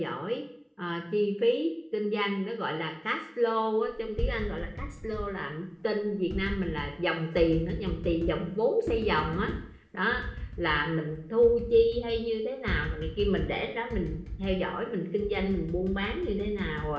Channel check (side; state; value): both; identical; correlation 1.00